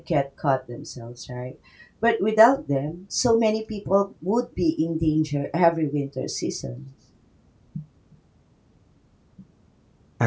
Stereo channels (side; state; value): both; identical; correlation 1.00